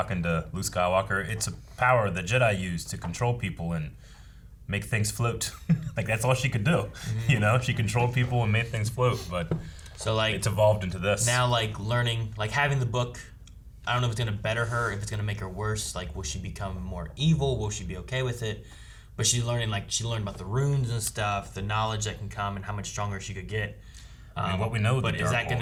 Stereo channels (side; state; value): both; identical; correlation 1.00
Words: to Luke Skywalker. It's a power the Jedi use to control people and make things float. Like that's all she could do. She controlled people and made things float. But so like it's evolved into this. Now like learning, like having the book, I don't know if it's gonna better her, if it's gonna make her worse. Like will she become more evil? Will she be okay with it? But she's learning, like she learned about the runes and stuff, the knowledge that can come and how much stronger she could get. I mean, what we know. But is that going